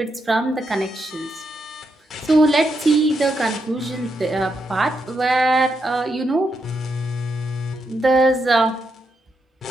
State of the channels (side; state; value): both; normal; correlation 0.82